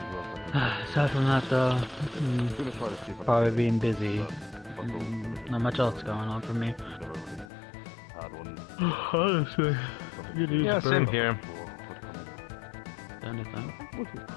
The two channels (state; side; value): drops out; right; at 7.5 s